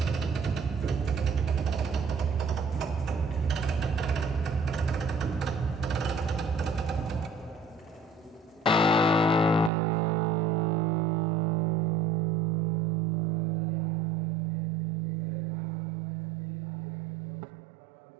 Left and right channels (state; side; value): drops out; left; at 9.7 s